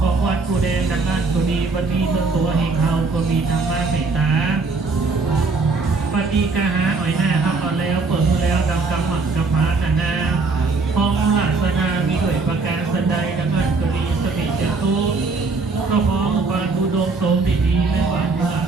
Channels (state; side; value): quieter; left; 4.0 dB